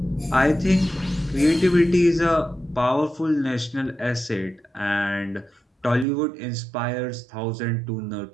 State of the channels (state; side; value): drops out; left; at 6.1 s